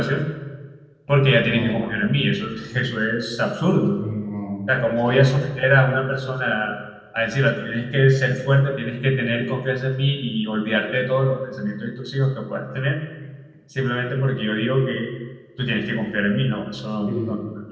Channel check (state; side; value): identical; both; correlation 1.00